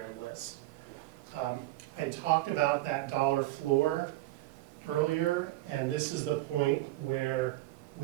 list. I talked about that dollar floor earlier, and this is the point where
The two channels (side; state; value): left; quieter; 17.1 dB